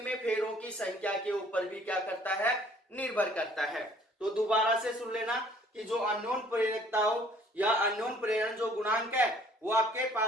फेरों की संख्या के ऊपर भी क्या करता है? निर्भर करता है। तो दोबारा से सुन लेना कि जो अननोन प्रेरकत्व या अननोन प्रेरण जो गुणांक है वो आपके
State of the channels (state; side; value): normal; both; correlation 0.57